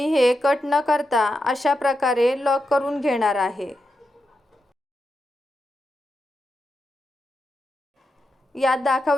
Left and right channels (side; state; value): both; normal; correlation 0.87